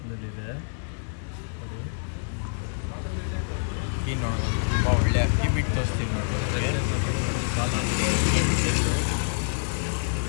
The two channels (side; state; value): right; silent; digital silence